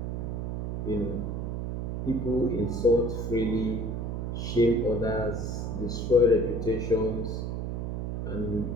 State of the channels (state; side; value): noise; right; hum, 3 dB below the sound